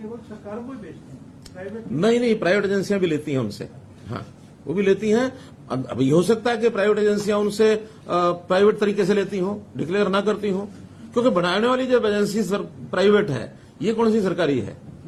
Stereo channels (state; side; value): identical; both; correlation 1.00